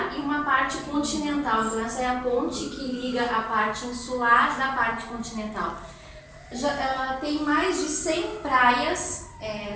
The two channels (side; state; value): both; identical; correlation 1.00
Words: e uma parte continental. Então, essa é a ponte que liga a parte insular da parte continental. Ela tem mais de 100 praias,